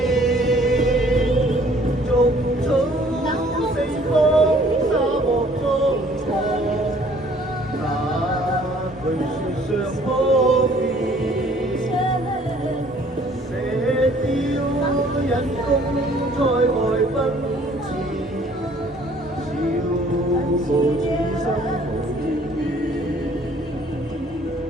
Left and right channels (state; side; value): normal; both; correlation 0.57